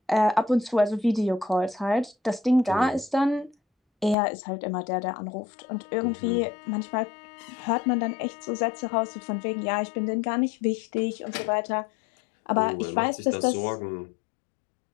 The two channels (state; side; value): drops out; right; at 4.2 s